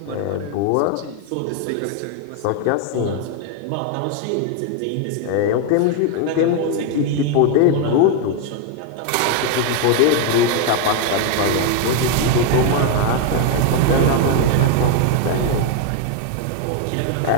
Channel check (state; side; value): different; both; correlation 0.01